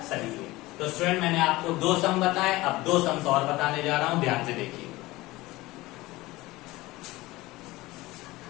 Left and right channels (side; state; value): right; quieter; 19.5 dB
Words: सही है। तो स्टूडेंट मैंने आपको 2 सम बताए, अब 2 सम्स और बताने जा रहा हूं, ध्यान से देखिए।